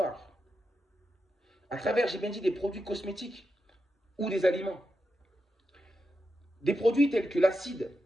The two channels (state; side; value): normal; both; correlation 0.87